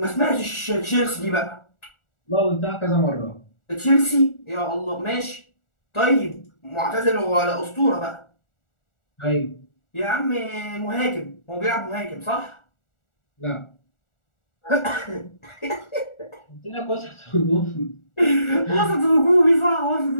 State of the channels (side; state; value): right; late; 1.4 ms